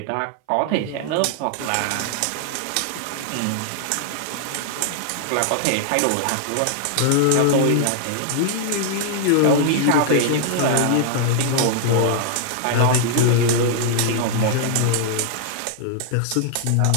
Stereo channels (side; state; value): both; different; correlation -0.01